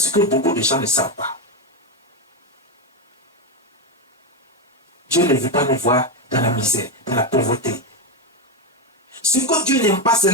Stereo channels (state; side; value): normal; both; correlation 0.09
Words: que beaucoup de gens ne savent pas. Dieu ne veut pas nous voir dans la misère, dans la pauvreté. Ce que Dieu n'aime pas, c'est